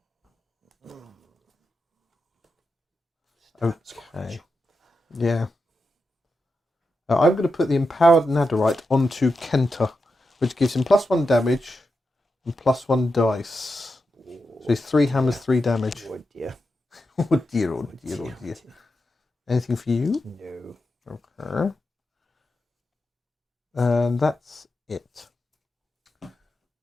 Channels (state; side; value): normal; both; correlation 0.88